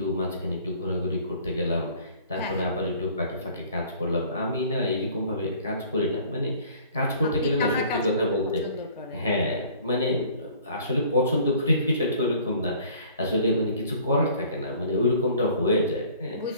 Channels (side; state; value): both; inverted; correlation -0.52